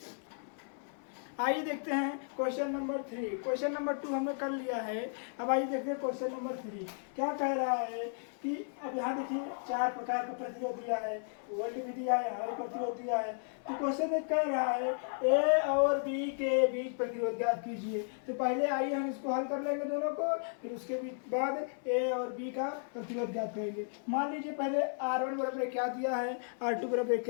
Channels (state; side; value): silent; right; 55 dB below the other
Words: आइए देखते हैं क्वेश्चन नंबर 3। क्वेश्चन नंबर 2 हमने कर लिया है। अब आइए देखते हैं क्वेश्चन नंबर 3 क्या कह रहा है कि अब यहाँ देखिए 4 प्रकार का प्रतिरोध दिया है, वोल्ट भी दिया है, हमारे प्रतिरोध दिया है। तो क्वेश्चन में कह रहा है ए और बी के बीच प्रतिरोध ज्ञात कीजिए। तो पहले आइए हम इसको हल कर लेंगे दोनों को, फिर उसके बाद ए और बी का प्रतिरोध ज्ञात करेंगे। मान लीजिए पहले R1 बराबर क्या दिया है, R2 बराबर